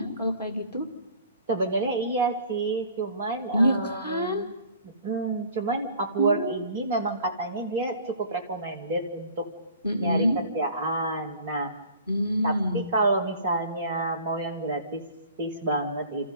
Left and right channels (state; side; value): inverted; both; correlation -0.48